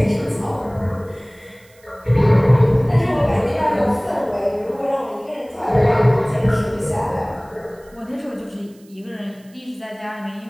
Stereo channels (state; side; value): noise; right; hiss, 30 dB below the sound